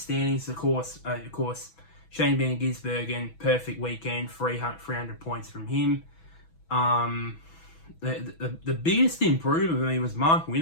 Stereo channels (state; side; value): late; right; 6.1 ms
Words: Of course, Shane Van Gisbergen, perfect weekend, 300 points from him. The biggest improvement for me was Mark